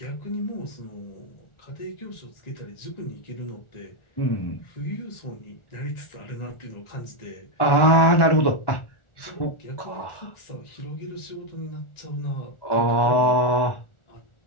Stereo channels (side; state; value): right; late; 1.4 ms